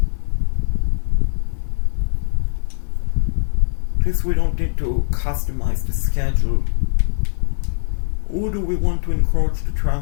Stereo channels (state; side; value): silent; right; digital silence